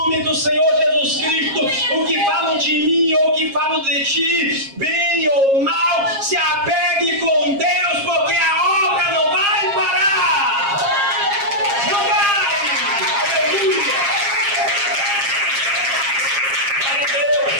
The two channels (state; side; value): late; left; 7.4 ms